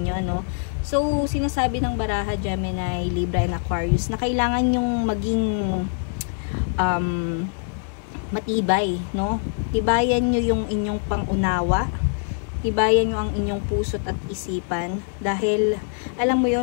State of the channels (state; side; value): silent; right; 63 dB below the other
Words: no? So, sinasabi ng baraha, Gemini, Libra, and Aquarius, na kailangan yung maging matibay, no? Tibayan nyo yung inyong pangunawa. Tibayan nyo ang inyong puso't at isipan. Dahil, alam mo